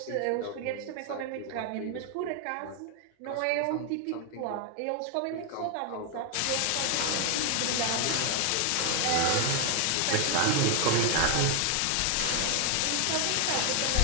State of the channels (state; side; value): different; both; correlation 0.00